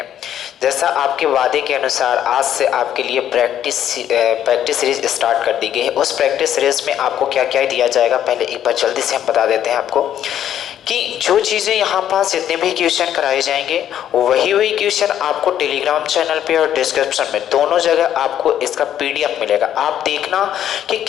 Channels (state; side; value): quieter; right; 10.6 dB